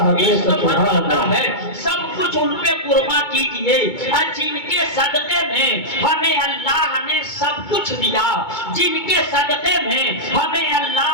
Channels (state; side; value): late; right; 2.2 ms